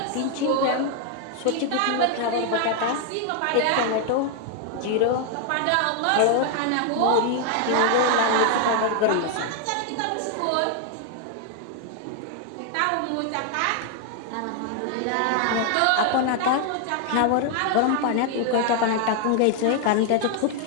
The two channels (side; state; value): both; different; correlation 0.00